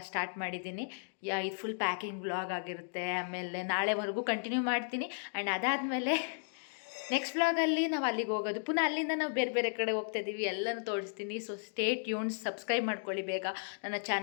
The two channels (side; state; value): right; silent; digital silence